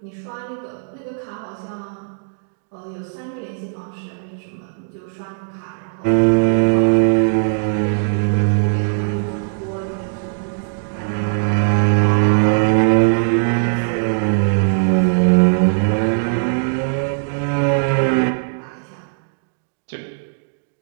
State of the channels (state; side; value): silent; left; digital silence